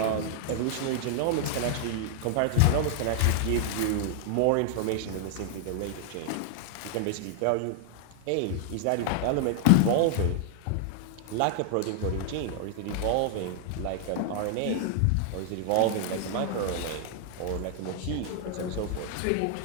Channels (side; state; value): both; different; correlation 0.00